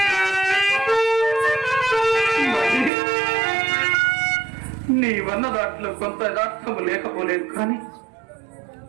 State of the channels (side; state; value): left; drops out; at 2.9 s